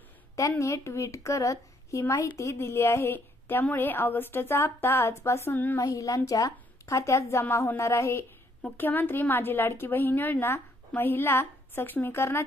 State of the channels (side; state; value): both; normal; correlation 0.69